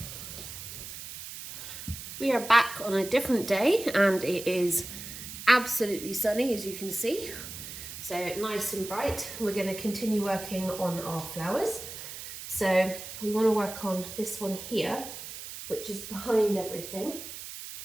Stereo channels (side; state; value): right; noise; hiss, 10 dB below the sound